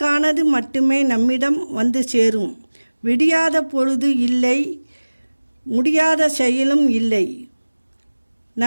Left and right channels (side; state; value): both; inverted; correlation -1.00